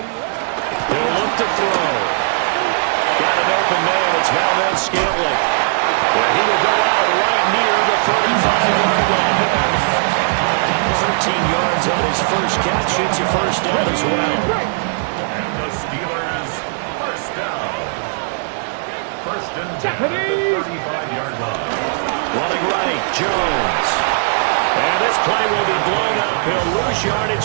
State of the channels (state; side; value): silent; left; digital silence